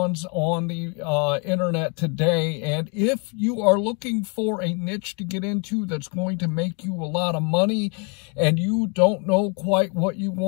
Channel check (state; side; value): quieter; right; 34.8 dB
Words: on the internet today, and if you are looking for a niche to get into that's going to make you a lot of money and you don't know quite what you